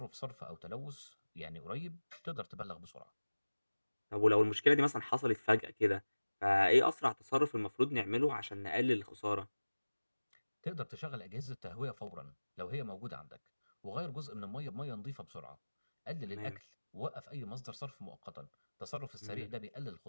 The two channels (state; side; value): inverted; both; correlation -1.00